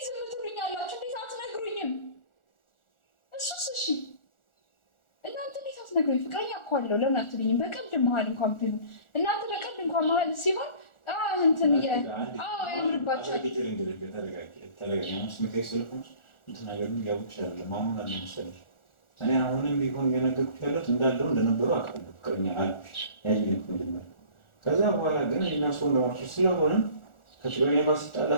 ዝም ትሉኛላችሁ? እንዴት አትነግሩኝም? እሱስ እሺ እናንተ እንዴት አትነግሩኝ? ፍቅረኛ እኮ አለው ለምን አትሉኝም? በቀልድ መሀል እንኳን ቢሆን እናንተ በቀልድ እንኳን መሀል ሲሆን እንትን ያምርባቸዋል። እኔ አሁንም ቢሆን እየነገርኩሽ ያለሁት እንዳለው እንደነበሩ አውቃለሁ። ፍቅረኛ አልኩሽ ያየኝ መጀመሪያ። ከዛ በኋላ ግን እኔና እሱ እንደማልኩሽ ስለሆነ ከፍቅረኛ ጋር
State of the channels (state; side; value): late; right; 1.4 ms